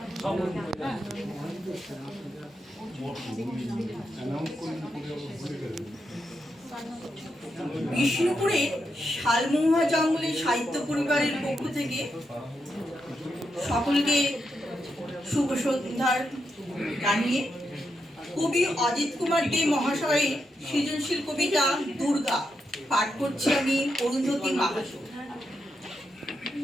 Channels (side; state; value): both; normal; correlation 0.84